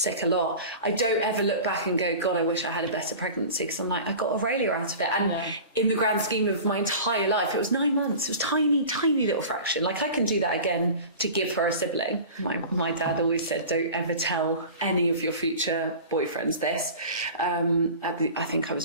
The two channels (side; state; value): both; inverted; correlation -0.37